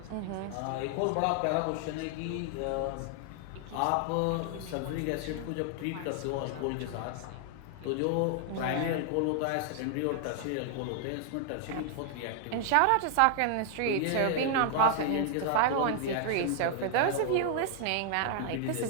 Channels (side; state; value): both; different; correlation 0.00